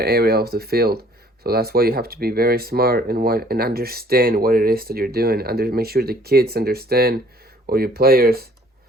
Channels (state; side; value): normal; both; correlation 0.57